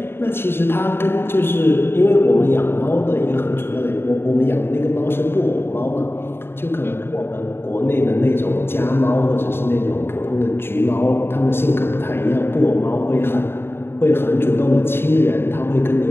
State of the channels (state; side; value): late; right; 0.11 ms